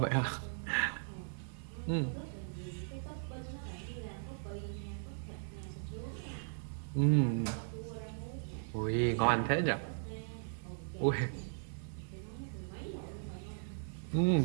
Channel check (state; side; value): silent; left; 53 dB below the other